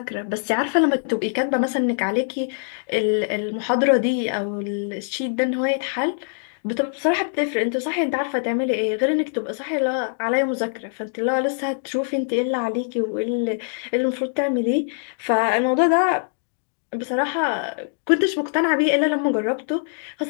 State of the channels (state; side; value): silent; right; digital silence